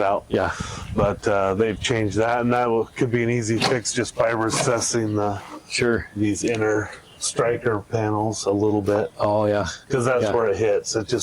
out. Yeah. But they've changed that, and that could be an easy fix just by recessing these inner striker panels a little bit. Oh, yeah. Because that's where it hits. It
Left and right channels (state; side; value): identical; both; correlation 1.00